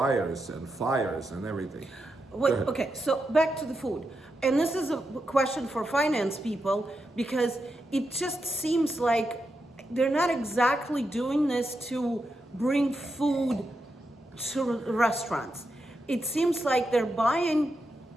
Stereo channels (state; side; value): normal; both; correlation 0.86